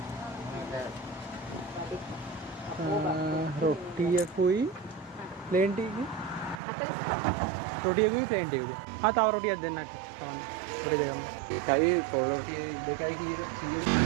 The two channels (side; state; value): left; drops out; at 6.6 s